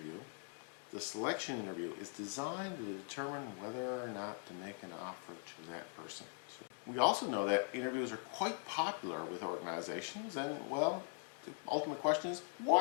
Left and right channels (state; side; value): silent; right; 50 dB below the other